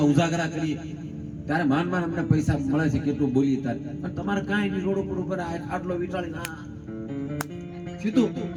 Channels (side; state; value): both; identical; correlation 1.00